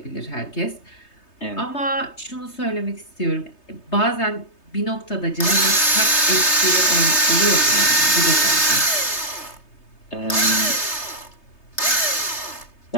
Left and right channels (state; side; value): late; right; 3.3 ms